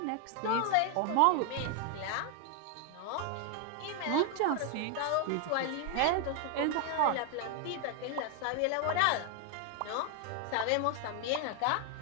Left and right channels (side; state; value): both; different; correlation 0.01